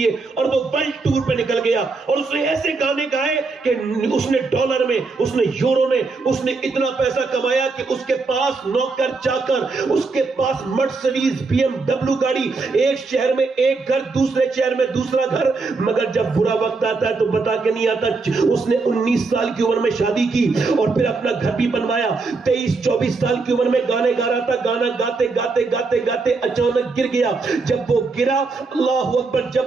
اور وہ ورلڈ ٹور پہ نکل گیا اور اس نے ایسے گانے گائے کہ اس نے ڈالر میں, اس نے یورو میں, اس نے اتنا پیسہ کمایا کہ اس کے پاس نوکر چاکر, اس کے پاس مرسڈیز BMW گاڑی, ایک شہر میں ایک گھر, دوسرے شہر میں دوسرا گھر. مگر جب برا وقت آتا ہے تو بتا کے نہیں آتا. اس نے 19 سال کی عمر میں شادی کی اور پھر اپنا گھر بھی بنوایا. 23-24 سال کی عمر میں گانے گا رہا تھا, گانا گاتے گاتے گاتے گاتے اچانک گر گیا. جب وہ گرا, اللہ اکبر,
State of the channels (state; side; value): quieter; left; 4.1 dB